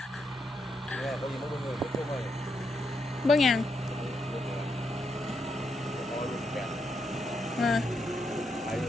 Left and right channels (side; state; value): both; normal; correlation 0.80